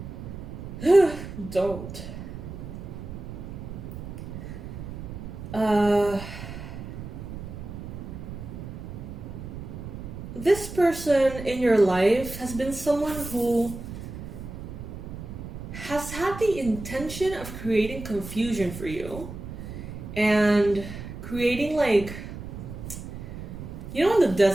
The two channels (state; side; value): noise; right; rumble, 10 dB below the sound